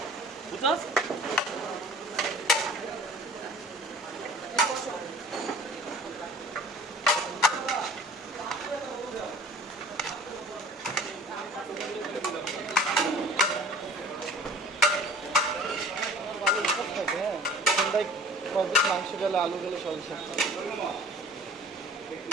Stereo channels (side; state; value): both; normal; correlation 0.46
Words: বুঝছস? মাংস গেলে আলু গেলে সব